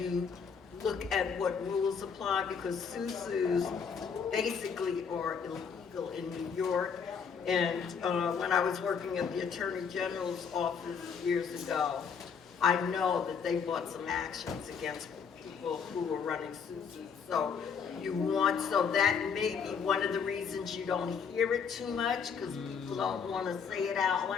look at what rules apply, because SUSUs basically are illegal in New York. And when I was working at the Attorney General's office years ago, I know that they brought some actions against people who were running SUSUs. So so that may be one of the reasons you don't hear it too much, because people don't want to say it out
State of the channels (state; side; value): quieter; right; 6.4 dB